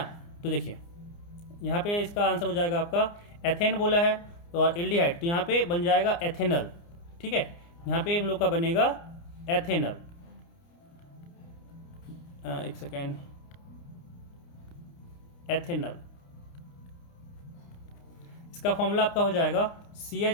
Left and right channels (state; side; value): late; right; 29 ms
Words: तो देखिए यहाँ पे इसका आंसर हो जाएगा आपका, एथेन बोला है और एल्डिहाइड, तो यहाँ पे बन जाएगा एथेनल। ठीक है, यहाँ पे हम लोग का बनेगा एथेनल। एक सेकेंड, एथेनल, इसका फॉर्मूला आपका हो जाएगा